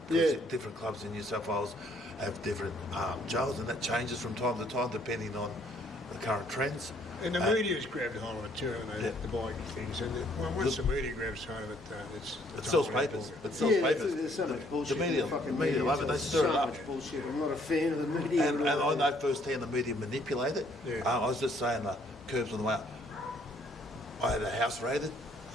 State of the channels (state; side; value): normal; both; correlation 0.64